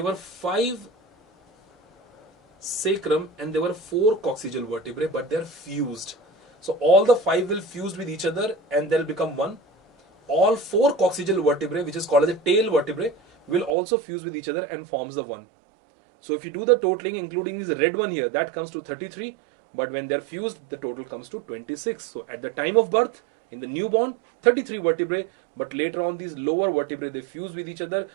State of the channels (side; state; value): left; drops out; at 13.8 s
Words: were 5 sacrum and there were 4 coccygeal vertebrae, but they're fused. So all the 5 will fuse with each other and they'll become one. All 4 coccygeal vertebrae, which is called as a tail vertebrae, will also fuse with each other and forms the one. So if you do the totaling, including this red one here, that comes to 33. But when they're fused, the total comes to 26. So at the time of birth, in the newborn, 33 vertebrae. But later on, these lower vertebrae, they fuse with each other,